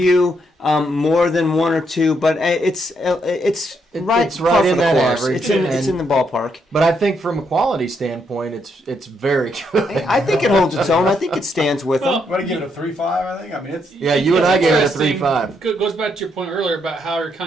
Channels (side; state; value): both; normal; correlation 0.76